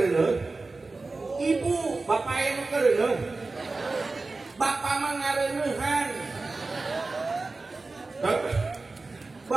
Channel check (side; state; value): left; quieter; 3.6 dB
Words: Ibu, bapak anu kereneuh. Bapak mah ngareneuhan.